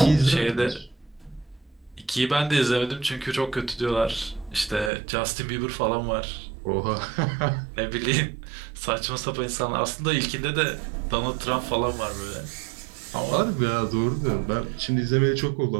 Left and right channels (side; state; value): left; drops out; at 4.9 s